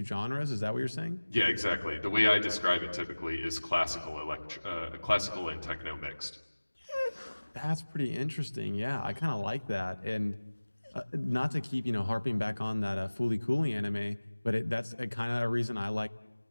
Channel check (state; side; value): inverted; both; correlation -1.00